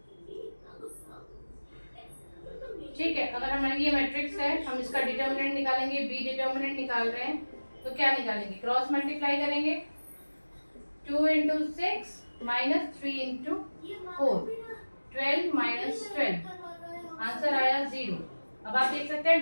ठीक है, अगर हमारी ये मैट्रिक्स है, हम इसका डिटर्मिनेंट निकालेंगे, बी डिटर्मिनेंट निकाल रहे हैं, तो क्या निकालेंगे? क्रॉस मल्टीप्लाई करेंगे, 2 into 6 minus 3 into 4, 12 minus 12, answer आया 0। अब आप देख सकते हैं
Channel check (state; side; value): inverted; both; correlation -1.00